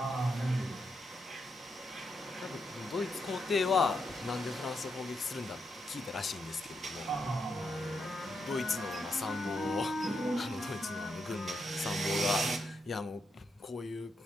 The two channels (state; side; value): normal; both; correlation 0.82